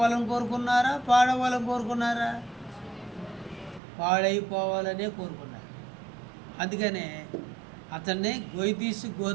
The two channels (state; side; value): drops out; left; at 3.8 s